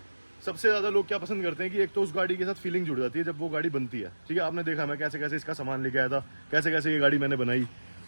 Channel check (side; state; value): both; inverted; correlation -1.00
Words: सबसे ज़्यादा लोग क्या पसंद करते हैं कि एक तो उस गाड़ी के साथ फीलिंग जुड़ जाती है जब वो गाड़ी बनती है। ठीक है, आपने देखा मैं कैसे कैसे इसका सामान लेके आया था, कैसे कैसे ये गाड़ी मैंने बनाई।